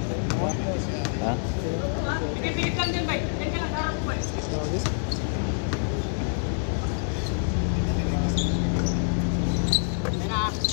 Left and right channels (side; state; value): right; silent; 61 dB below the other